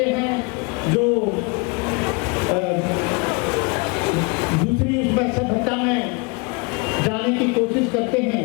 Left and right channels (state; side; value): quieter; right; 30.4 dB